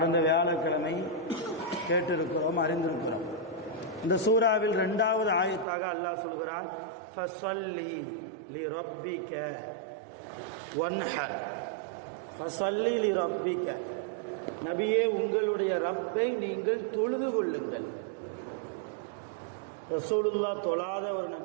வியாழக்கிழமை கேட்டிருக்கிறோம், அறிந்திருக்கிறோம். இந்த சூறாவில் 2வது ஆயத்தாக அல்லாஹ் சொல்கிறான், ஃபஸல்லி லிரப்பிக வன்ஹர். ஃபஸல்லி லிரப்பிக, நபியே உங்களுடைய ரப்பை நீங்கள் தொழுது கொள்ளுங்கள். ரசூலுல்லாஹ் தொழாத ஒரு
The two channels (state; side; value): drops out; left; at 5.7 s